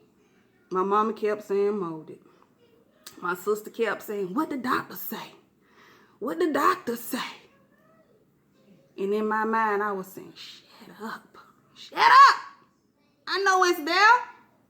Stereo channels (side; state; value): both; identical; correlation 1.00